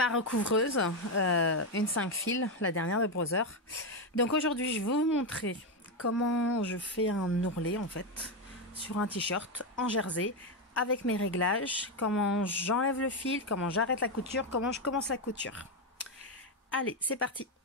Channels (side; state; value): both; normal; correlation 0.08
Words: recouvreuse, une 5 fils, la dernière de Brother. Donc aujourd'hui, je vais vous montrer comment je fais un ourlet en fait sur un t-shirt en jersey avec mes réglages, comment j'enlève le fil, comment j'arrête la couture, comment je commence la couture. Allez, c'est parti.